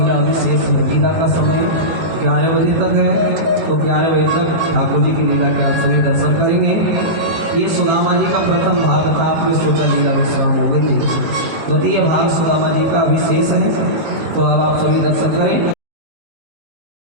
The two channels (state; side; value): late; left; 18 ms